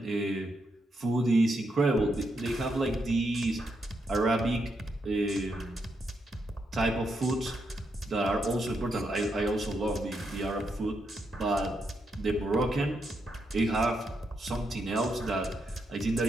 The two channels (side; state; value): both; normal; correlation 0.81